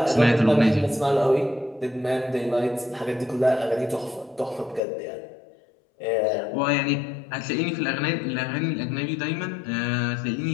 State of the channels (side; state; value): right; drops out; at 4.8 s